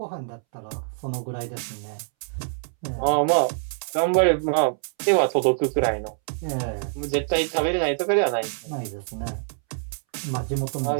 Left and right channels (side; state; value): left; silent; 62 dB below the other